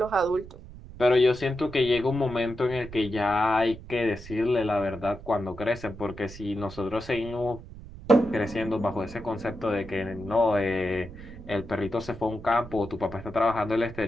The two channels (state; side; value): noise; right; rumble, 15 dB below the sound